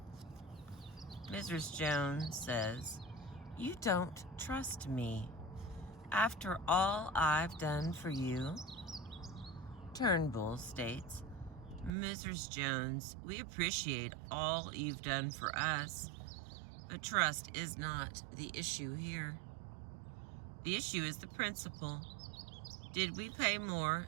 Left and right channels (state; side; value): drops out; left; at 11.9 s